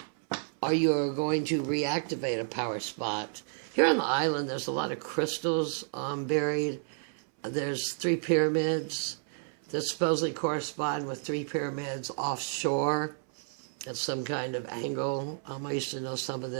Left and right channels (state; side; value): silent; left; 57 dB below the other